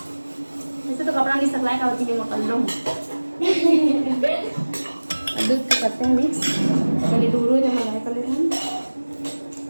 ऐसे तो कपड़ा नहीं सकलाए का होती है मैं कर लूँ दूध को करते हैं मिक्स पहले दूर हो जब मैं कर लेते हैं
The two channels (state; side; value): inverted; both; correlation -1.00